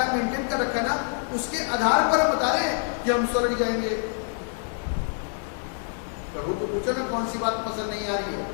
है, मेंटेन कर रखा ना, उसके आधार पर हम बता रहे हैं कि हम स्वर्ग जाएंगे। प्रभु को पूछो ना कौन सी बात पसंद नहीं आ रही है।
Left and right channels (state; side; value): silent; right; 57 dB below the other